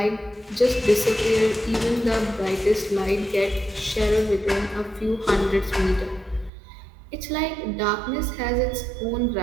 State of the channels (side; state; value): left; drops out; at 6.5 s